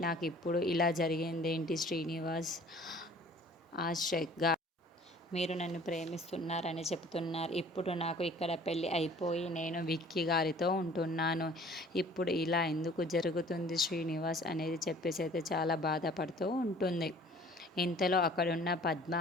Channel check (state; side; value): normal; both; correlation 0.51